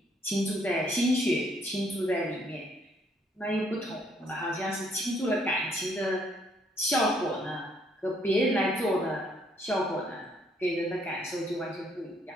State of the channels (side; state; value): both; normal; correlation 0.68